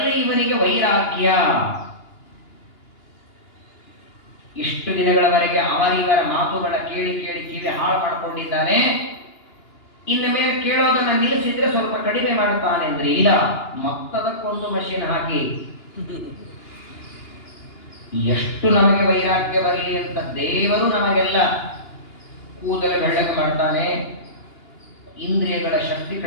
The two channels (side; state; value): right; late; 2.9 ms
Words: ಇವನಿಗೆ ವೈರಾಗ್ಯ. ಇಷ್ಟು ದಿನಗಳವರೆಗೆ ಅವರಿವರ ಮಾತುಗಳ ಕೇಳಿ ಕೇಳಿ ಕಿವಿ ಹಾಳು ಮಾಡಿಕೊಂಡಿದ್ದಾನೆ. ಇನ್ನು ಮೇಲೆ ಕೇಳೋದನ್ನ ನಿಲ್ಲಿಸಿದ್ರೆ ಸ್ವಲ್ಪ ಕಡಿಮೆ ಮಾಡುತ್ತಾನೆ ಅಂದ್ರೆ ಇಲ್ಲ, ಮತ್ತದಕ್ಕೊಂದು ಮಷೀನ್ ಹಾಕಿ ಎಷ್ಟು ನಮಗೆ ವೈರಾಗ್ಯ ಬರಲಿ ಅಂತ ದೇವರು ನಮಗೆಲ್ಲ ಕೂದಲು ಬೆಳ್ಳಗೆ ಮಾಡ್ತಾನೆ. ಇಂದ್ರಿಯಗಳ ಶಕ್ತಿ